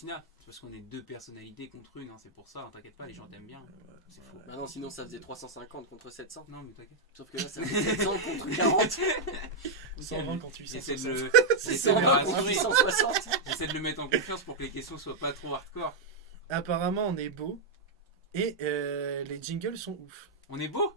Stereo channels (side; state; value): left; quieter; 3.5 dB